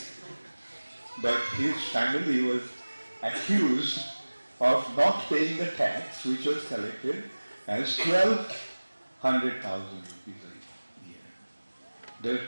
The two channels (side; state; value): both; inverted; correlation -1.00